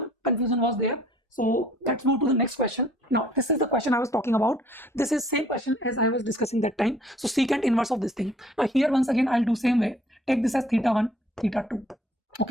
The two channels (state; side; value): normal; both; correlation 0.57